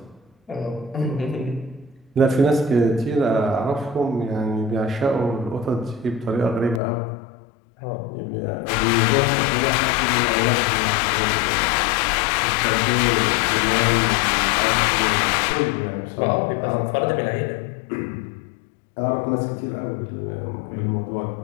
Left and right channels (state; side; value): drops out; right; at 6.8 s